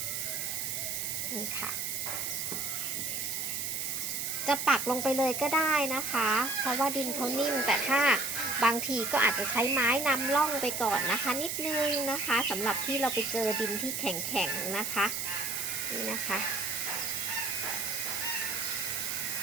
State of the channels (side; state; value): right; noise; hiss, 2 dB below the sound